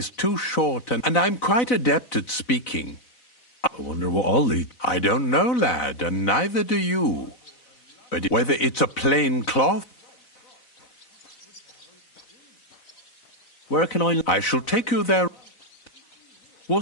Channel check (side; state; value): right; late; 4.0 ms